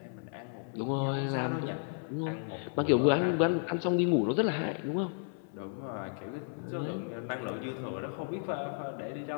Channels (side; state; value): right; silent; 56 dB below the other